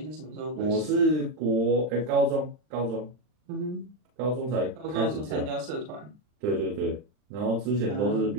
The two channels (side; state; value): left; late; 39 ms